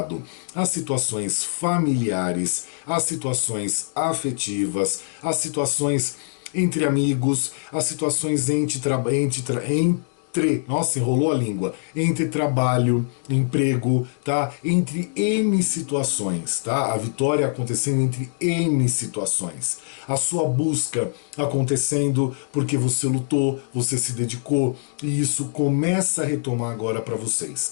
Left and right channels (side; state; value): right; silent; digital silence